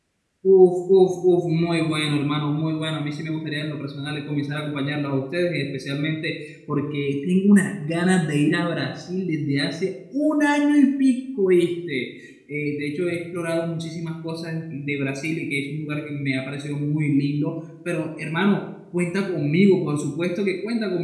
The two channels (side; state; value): both; identical; correlation 1.00